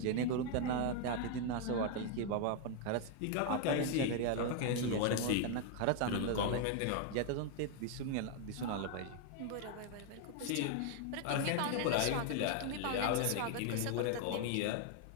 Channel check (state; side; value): different; both; correlation 0.00